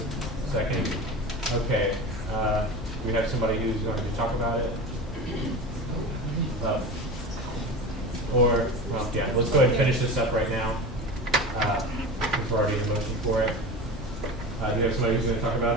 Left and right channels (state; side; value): normal; both; correlation 0.30